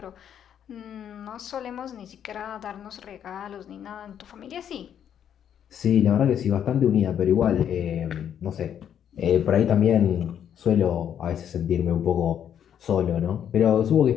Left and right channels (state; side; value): quieter; right; 9.3 dB